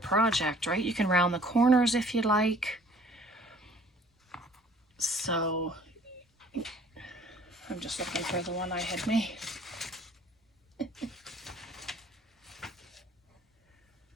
right? You can round the corners if you like. So I'm just looking for the one I had made.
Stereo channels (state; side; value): normal; both; correlation 0.55